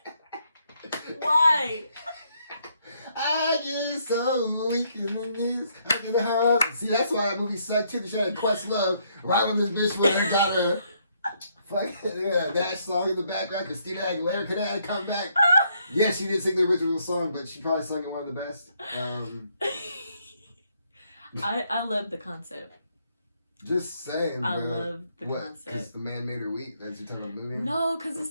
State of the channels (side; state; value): both; inverted; correlation -0.72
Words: Why? I get so weak in the knees. I get the heart. See, that's why that movie sucked too. She had a Quest Love right when this bitch went and got her fucking that song in the background. Christina Aguilera could have come back. Yeah, she did sing the original song, but she probably sung it one of the best. I love the concept. Just saying, I love the concept. Because the man made her weak? That's you talking about the movie? No, because